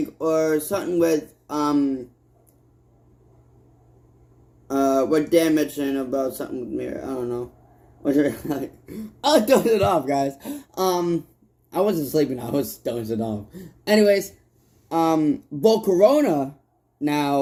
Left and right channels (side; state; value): both; identical; correlation 1.00